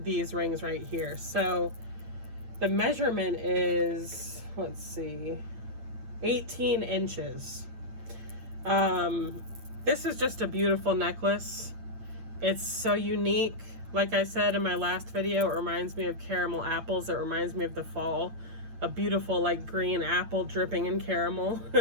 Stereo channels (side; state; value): left; late; 8.6 ms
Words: rings right here. So the measurement is, let's see, 18 inches. This is just a beautiful necklace. It's so unique. Like I said in my last video, it reminds me of caramel apples. It reminds me of the fall. A beautiful like green apple dripping in caramel.